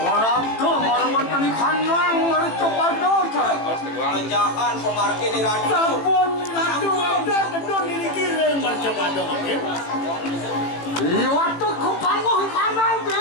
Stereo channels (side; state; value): right; late; 18 ms